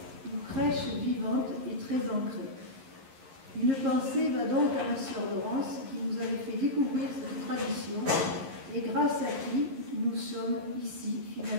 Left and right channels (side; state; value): left; late; 11 ms